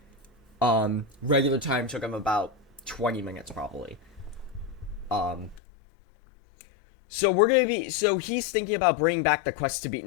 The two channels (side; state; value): right; drops out; at 5.6 s